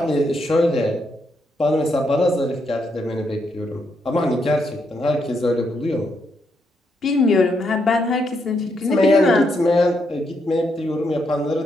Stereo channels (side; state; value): both; normal; correlation 0.78